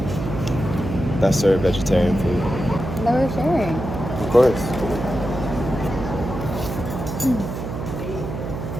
serve vegetarian food. That we're sharing. Of course.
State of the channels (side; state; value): right; noise; hum, 6 dB below the sound